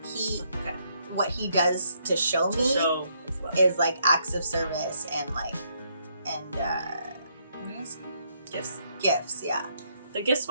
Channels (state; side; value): inverted; both; correlation -0.73